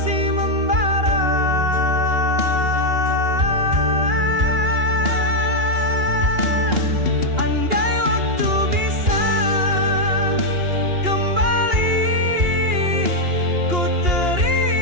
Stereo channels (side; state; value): left; late; 2.8 ms